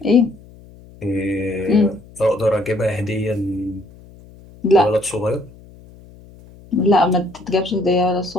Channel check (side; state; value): left; noise; hum, 22 dB below the sound